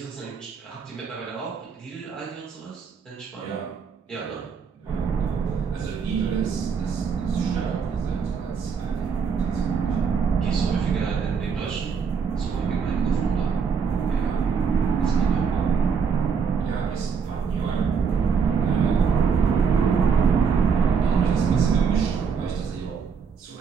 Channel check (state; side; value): quieter; left; 6.1 dB